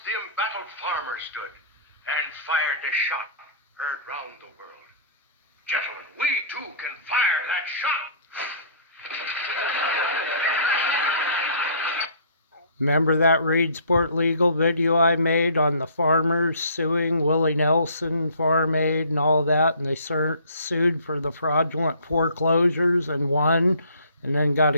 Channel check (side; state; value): both; inverted; correlation -0.52